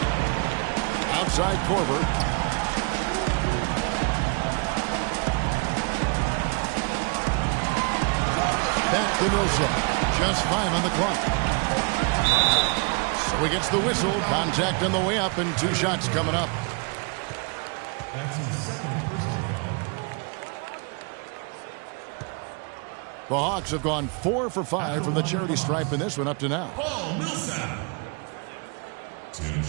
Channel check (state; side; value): quieter; left; 34.4 dB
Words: Outside Korver. Back to Millsap. Just 5 on the clock. So he gets the whistle. Contact on the way up and 2 shots coming up. That's his second personal foul. The Hawks have gone 4 for 5 from the charity stripe in this one up to now. Paul Millsap. 2